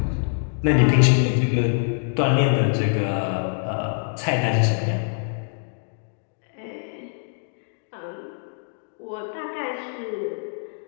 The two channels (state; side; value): silent; right; 61 dB below the other